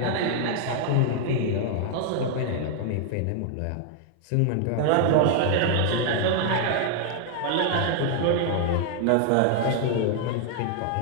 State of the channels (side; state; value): both; different; correlation 0.00